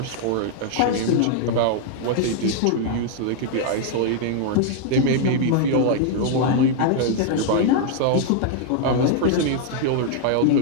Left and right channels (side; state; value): both; different; correlation 0.00